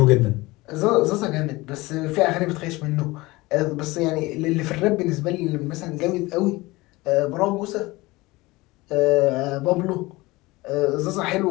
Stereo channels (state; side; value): quieter; right; 21.2 dB